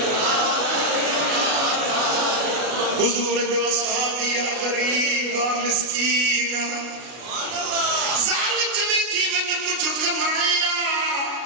حضور جو اصحابی غریب مسکین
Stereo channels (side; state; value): left; late; 32 ms